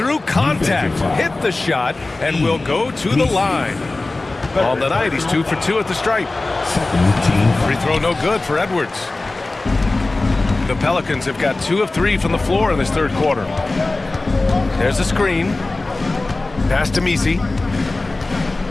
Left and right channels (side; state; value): right; quieter; 3.1 dB